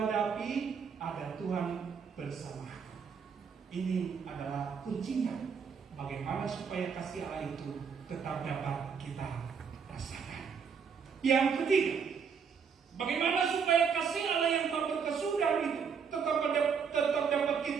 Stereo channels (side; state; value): left; quieter; 6.4 dB